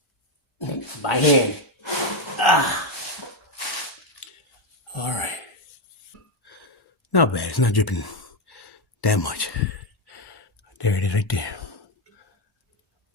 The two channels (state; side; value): normal; both; correlation 0.06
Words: is. By hand. Ah. All right. Not bad. It's not dripping that much. There it is, right there.